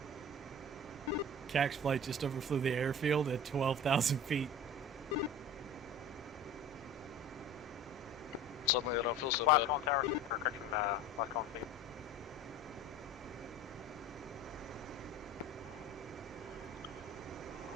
CAX flight just overflew the airfield at 12,000 feet. Suddenly I don't feel so Last bad. call on tower, or correction, last call on state.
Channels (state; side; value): normal; both; correlation 0.38